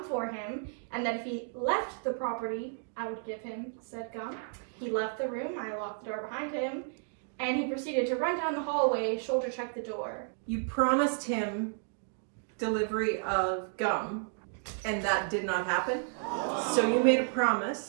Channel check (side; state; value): left; silent; 56 dB below the other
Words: for him and that if he left the property, I would give him said gum. He left the room, I locked the door behind him, and he proceeded to run down the hallway, shoulder check the door. You promised him delivery of gum, and that did not happen. So you made a